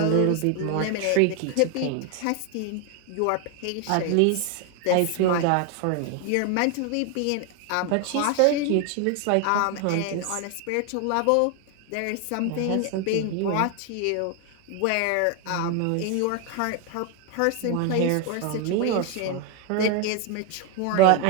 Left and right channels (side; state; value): both; different; correlation 0.01